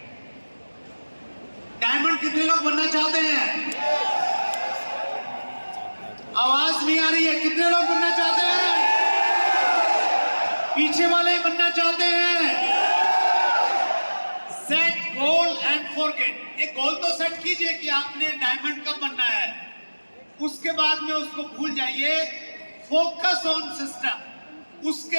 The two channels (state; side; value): inverted; both; correlation -1.00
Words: Diamond कितने लोग बनना चाहते हैं? आवाज नहीं आ रही है, कितने लोग बनना चाहते हैं? पीछे वाले बनना चाहते हैं? Set goal and forget. एक गोल तो सेट कीजिए कि आपने डायमंड कब बनना है, उसके बाद में उसको भूल जाइए। फोकस ऑन सिस्टम,